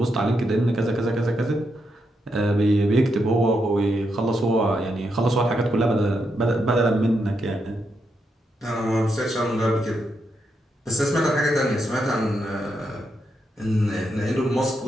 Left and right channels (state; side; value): normal; both; correlation 0.82